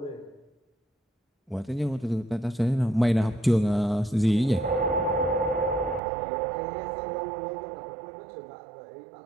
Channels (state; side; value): drops out; left; at 6.0 s